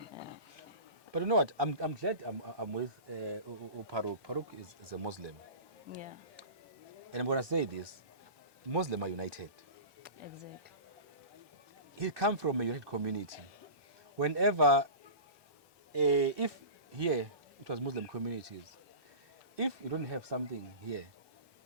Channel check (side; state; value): left; late; 1.2 ms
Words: but you know what I'm glad I'm with Farouk is a Muslim and I'm going to say this Muslims are united. Exactly. He come from a united community. Whenever, if here it was Muslim communities, if you don't have something here,